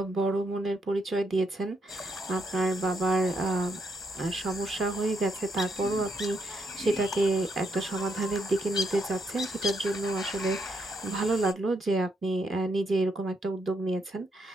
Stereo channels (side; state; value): both; normal; correlation 0.77